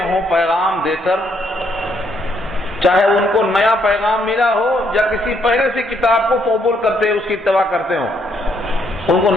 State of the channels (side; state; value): both; normal; correlation 0.72